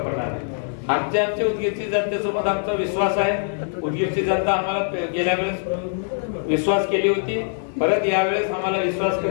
पडणार नाही. आमच्या उदगीरची जनतेसोबत आमचा विश्वास आहे. उदगीरची जनता आम्हाला गेल्या वेळेस विश्वास केली होती, परत यावेळेस आम्हाला विश्वास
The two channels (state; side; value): silent; right; 60 dB below the other